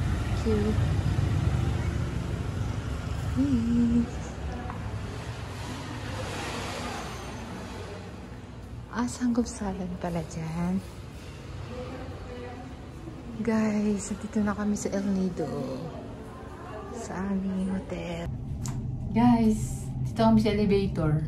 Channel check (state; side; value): identical; both; correlation 1.00